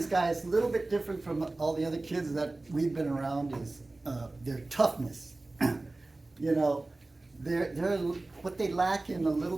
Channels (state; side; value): quieter; left; 3.0 dB